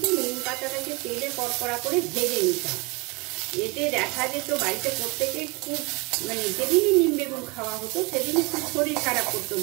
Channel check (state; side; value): quieter; left; 28.2 dB